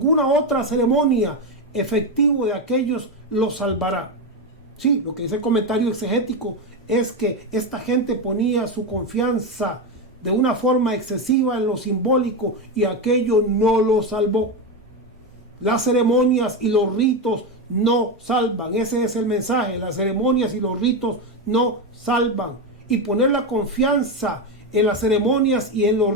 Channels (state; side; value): normal; both; correlation 0.12